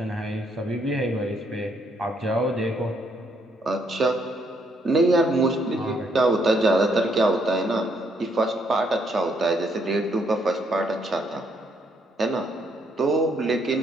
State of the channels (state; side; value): normal; both; correlation 0.72